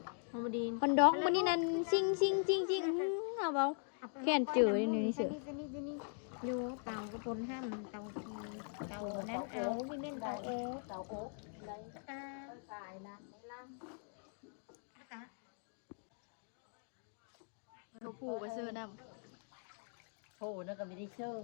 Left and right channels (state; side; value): silent; right; 51 dB below the other